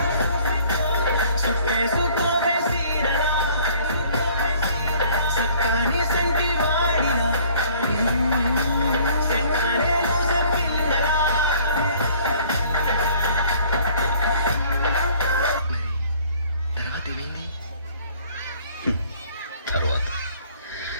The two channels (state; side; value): inverted; both; correlation -0.56